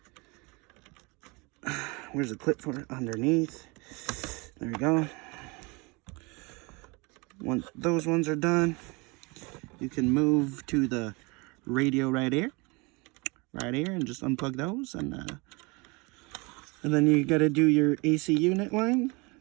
Where's the clip for it? Underneath. There we go. Once those ones are done, you can move to the radio right here. Right here, and just unplug those, and then you got to do your AC unit line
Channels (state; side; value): quieter; left; 27.6 dB